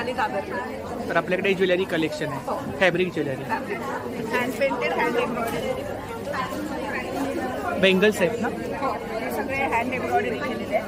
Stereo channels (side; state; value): both; identical; correlation 1.00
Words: कागदकर. तर आपल्याकडे ज्वेलरी कलेक्शन आहे, fabric jewellery. Hand painted, hand embroidery. Bangles आहेत ना? हो, हे सगळे हँड एम्ब्रॉयडरी केलेले